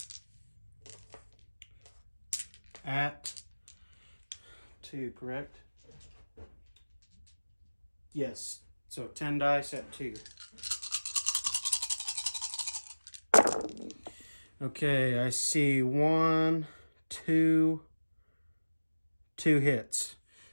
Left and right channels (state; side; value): inverted; both; correlation -1.00